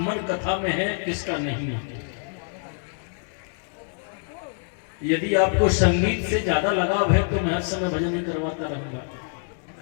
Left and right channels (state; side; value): silent; right; 61 dB below the other